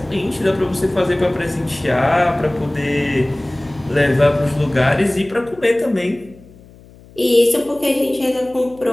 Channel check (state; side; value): noise; left; hum, 24 dB below the sound